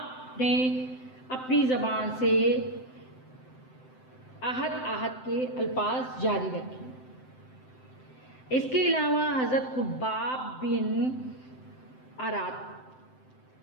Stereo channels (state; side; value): late; right; 7.8 ms